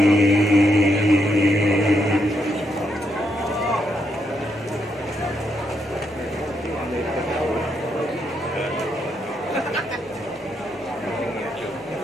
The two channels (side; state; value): both; normal; correlation 0.79